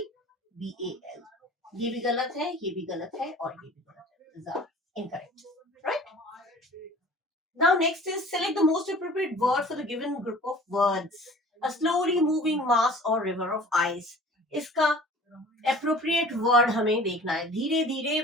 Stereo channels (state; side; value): normal; both; correlation 0.46